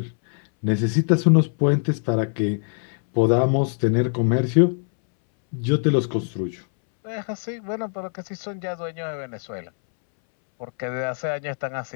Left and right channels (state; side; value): silent; right; 63 dB below the other